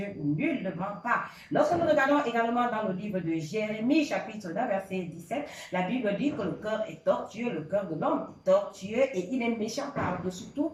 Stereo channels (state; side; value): identical; both; correlation 1.00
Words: Nullement pas. Lorsque nous regardons également dans le livre de Jérémie, chapitre 1, verset 17, la Bible dit que le cœur est tortueux, le cœur de l'homme est tortueux et il est méchant par-dessus tout.